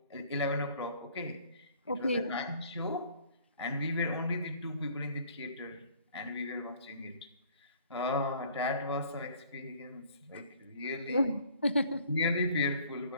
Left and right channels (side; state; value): both; inverted; correlation -0.56